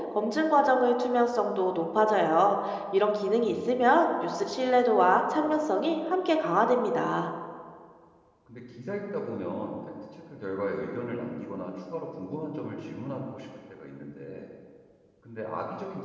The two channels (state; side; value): identical; both; correlation 1.00